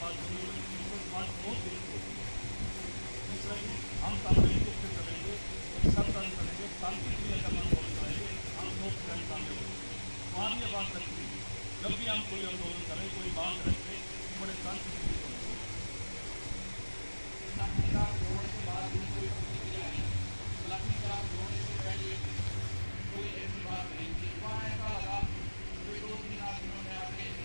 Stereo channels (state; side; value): inverted; both; correlation -1.00